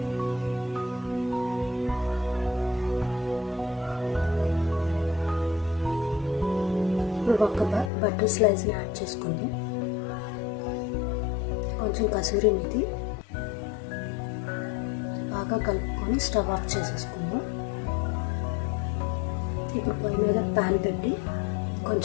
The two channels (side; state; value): right; drops out; at 7.9 s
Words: ఇప్పుడు ఒక బటర్ స్లైస్ని యాడ్ చేసుకుందాం. కొంచెం కసూరి మేతి బాగా కలుపుకొని స్టవ్ ఆఫ్ చేసేసుకుందాం. ఇప్పుడు పొయ్యి మీద ప్యాన్ పెట్టి